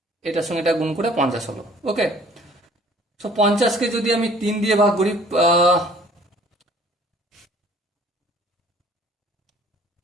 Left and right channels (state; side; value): normal; both; correlation 0.55